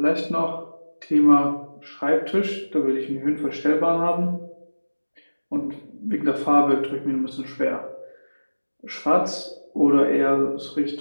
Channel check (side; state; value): both; inverted; correlation -1.00